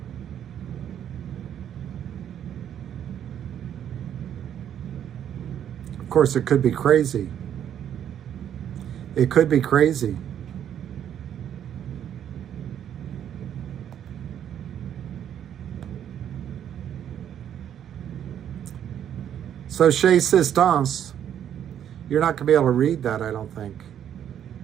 Of course, it could be crazy. It could be crazy. So Chez Sistance, you're not going to be able to read that, I don't think.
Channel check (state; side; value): quieter; left; 9.8 dB